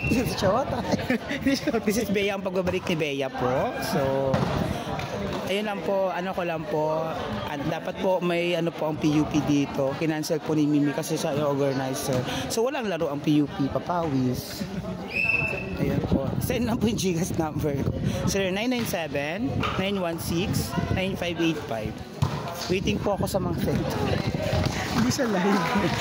This is your This is Bea, ang pagbabalik ni Bea po. So, ayun lang po, ano ko lang po, at dapat po may ano po ang PUP dito. Kinancel po ni Mimi kasi siya yung organizer. So, walang laro ang PUP, papawis. Ayun po. Send lang po yung Gcash number ko. 0997-916-9585. Waiting po ako sa mga send. Hindi siya live.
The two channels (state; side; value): identical; both; correlation 1.00